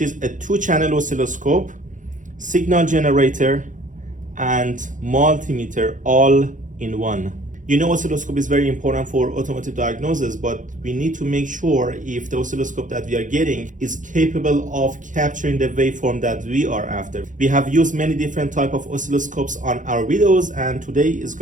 is a 2-channel oscilloscope, signal generator, and multimeter all in one. You know, oscilloscope is very important for automotive diagnosis, but we need to make sure if the oscilloscope that we are getting is capable of capturing the waveform that we are after. We have used many different type of oscilloscopes on our videos, and today is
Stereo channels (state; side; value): late; left; 0.37 ms